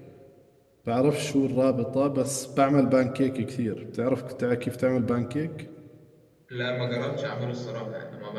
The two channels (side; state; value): both; identical; correlation 1.00